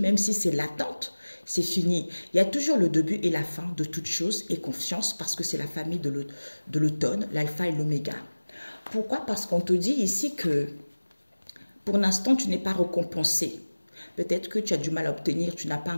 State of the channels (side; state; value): both; inverted; correlation -1.00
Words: si c'est latente, c'est fini. Il y a toujours le début et la fin de toute chose et confiance parce que c'est la famille de l'automne, l'alpha et l'oméga. Pourquoi? Parce qu'on te dit ici que pour l'instant, tu n'es pas récompensé. Peut-être que tu as du mal à obtenir, tu n'as pas